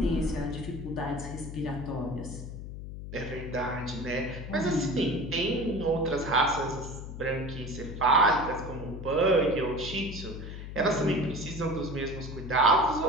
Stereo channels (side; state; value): left; noise; hum, 9 dB below the sound